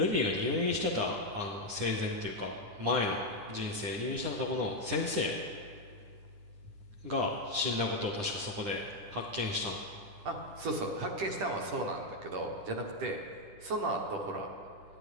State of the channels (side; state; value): left; late; 9.9 ms